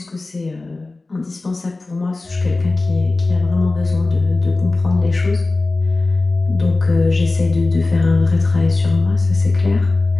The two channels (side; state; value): right; quieter; 3.3 dB